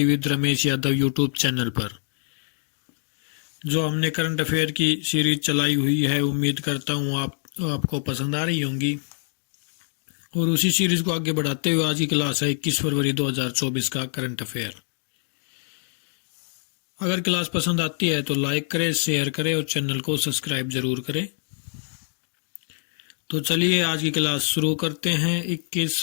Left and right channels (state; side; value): silent; right; 62 dB below the other